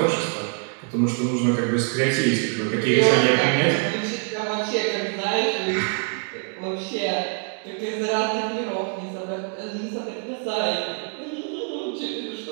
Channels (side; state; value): left; quieter; 39.1 dB